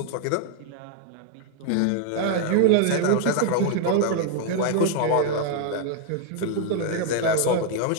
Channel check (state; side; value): different; both; correlation 0.00